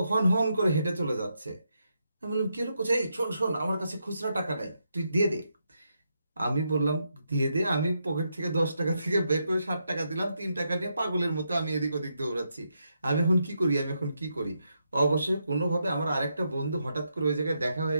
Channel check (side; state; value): both; inverted; correlation -0.81